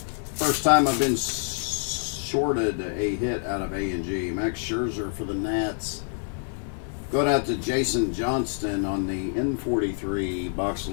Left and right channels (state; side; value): silent; right; 61 dB below the other